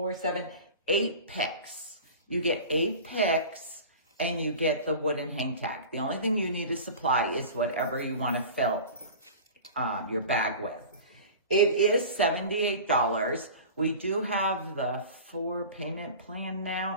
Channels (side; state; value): both; inverted; correlation -0.37